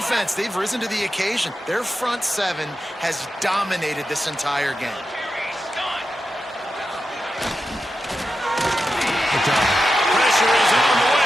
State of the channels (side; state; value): both; normal; correlation 0.89